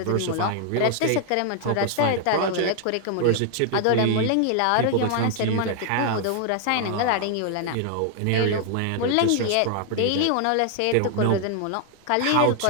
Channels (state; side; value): different; both; correlation 0.00